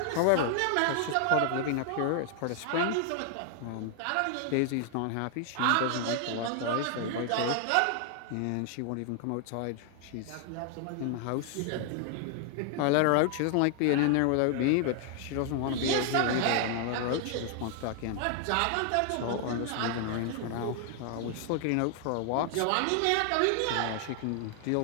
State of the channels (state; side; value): different; both; correlation 0.00